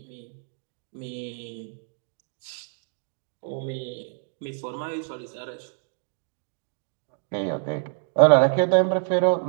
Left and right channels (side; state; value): left; silent; digital silence